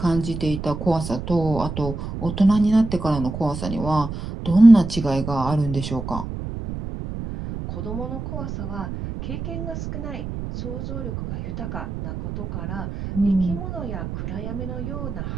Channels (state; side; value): noise; right; rumble, 7 dB below the sound